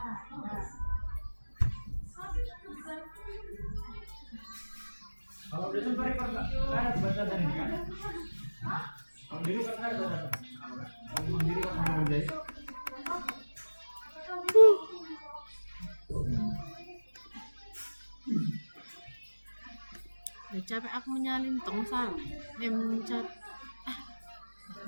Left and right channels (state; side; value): inverted; both; correlation -1.00